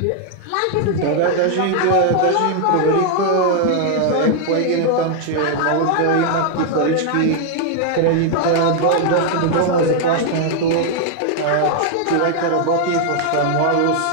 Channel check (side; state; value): both; different; correlation 0.00